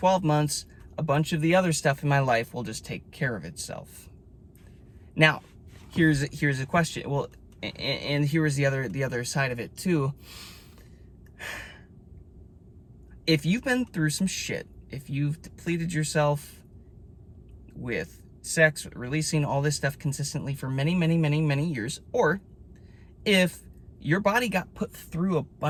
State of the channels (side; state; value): both; identical; correlation 1.00